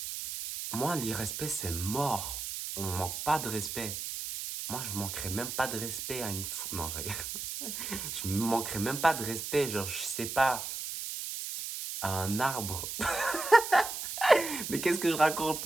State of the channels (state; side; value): noise; right; hiss, 5 dB below the sound